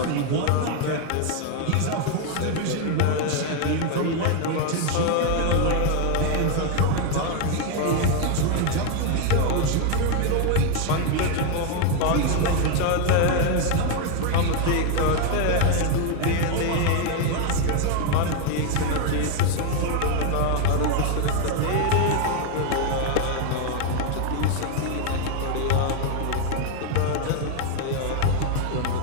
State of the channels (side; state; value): both; different; correlation 0.01